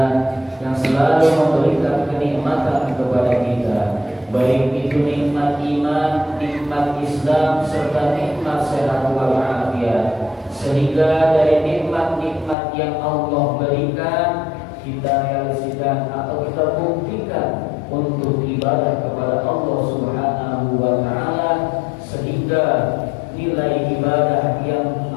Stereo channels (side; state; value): right; drops out; at 12.6 s